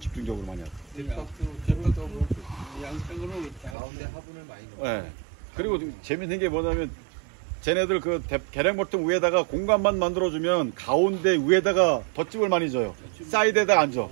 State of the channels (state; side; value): drops out; left; at 3.8 s